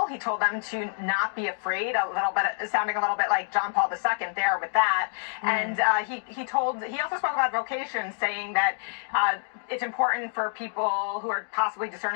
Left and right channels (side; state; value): right; silent; 60 dB below the other